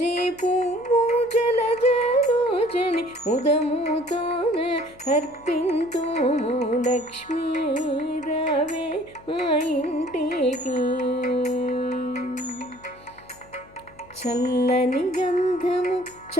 పువ్వు జలజలోచని ముదముతోన అర్పింతుము, లక్ష్మీ రావే మా ఇంటికి, చల్లని గంధము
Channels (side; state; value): left; noise; hum, 26 dB below the sound